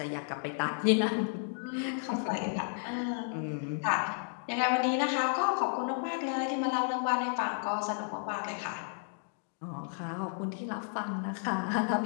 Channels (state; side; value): silent; right; 56 dB below the other